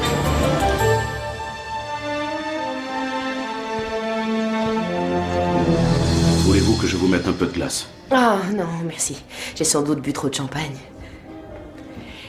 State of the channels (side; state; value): both; identical; correlation 1.00